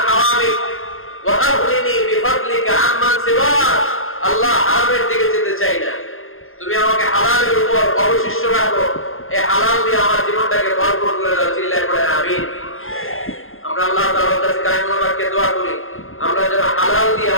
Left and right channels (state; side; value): late; right; 0.60 ms